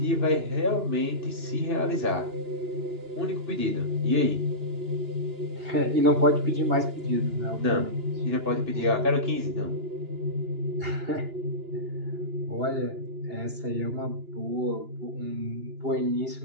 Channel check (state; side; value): late; left; 2.9 ms